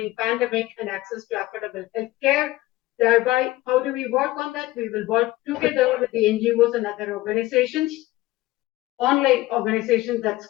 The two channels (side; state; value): right; quieter; 17.7 dB